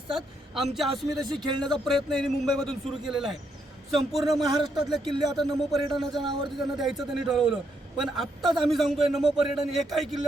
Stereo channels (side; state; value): both; normal; correlation 0.77